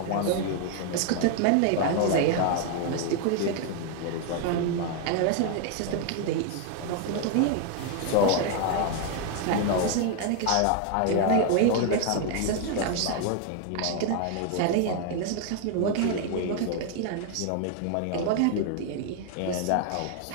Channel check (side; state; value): both; different; correlation 0.00